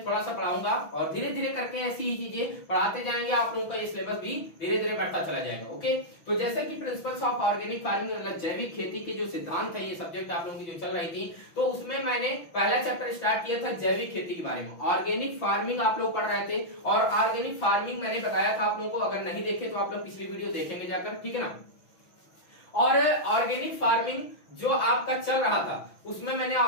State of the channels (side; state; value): right; late; 6.0 ms